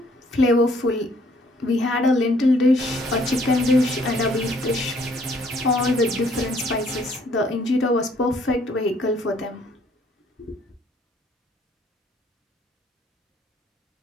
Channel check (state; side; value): normal; both; correlation 0.63